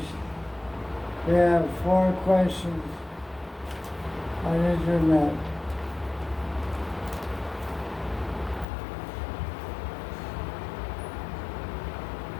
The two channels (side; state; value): right; drops out; at 8.7 s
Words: We have 4 questions on internet.